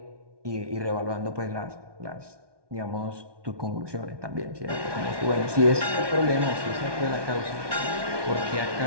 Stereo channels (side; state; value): left; late; 1.2 ms